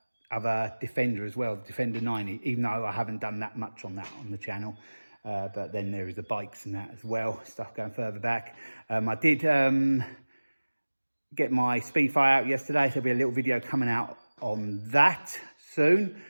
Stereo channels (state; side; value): inverted; both; correlation -1.00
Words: Defender as well, the Defender 90, even though I haven't done that much on that on the channel. But then there is the bikes and that as well, stuff going further back. I did get my Speed Fight out yesterday, so there'll be a little video coming out on that soon.